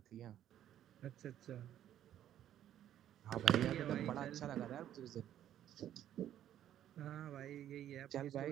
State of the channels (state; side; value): quieter; left; 11.3 dB